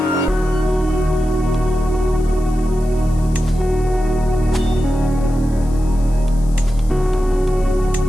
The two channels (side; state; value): left; noise; hiss, 23 dB below the sound